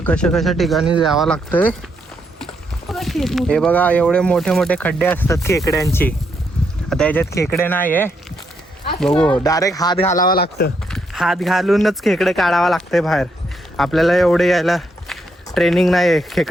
कशा कशा ठिकाणी जावं लागतंय. हे बघा एवढे मोठे मोठे खड्डे असतात खेकड्यांची. आता याच्यात खेकडे नाही आहे. बघू डायरेक्ट हात घालावा लागतं. हात घालूनच खेकडे काढावा लागतंय बाहेर. आपल्याला एवढे यायला ट्रेनिंग नाही आहे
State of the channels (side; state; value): both; normal; correlation 0.77